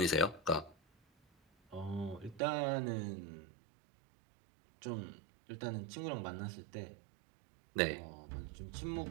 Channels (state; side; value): drops out; left; at 2.4 s